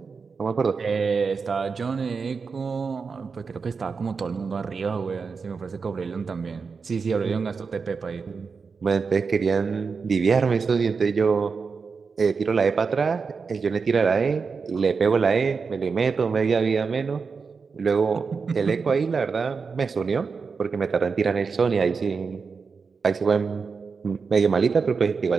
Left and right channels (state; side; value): quieter; left; 5.1 dB